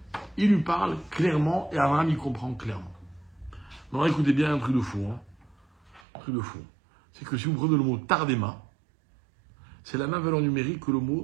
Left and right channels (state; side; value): drops out; left; at 6.0 s